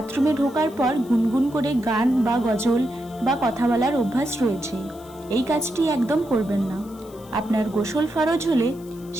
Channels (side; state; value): left; noise; hiss, 24 dB below the sound